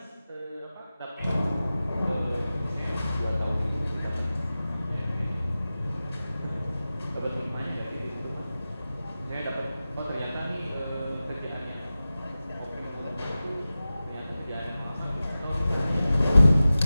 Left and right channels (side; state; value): both; inverted; correlation -0.95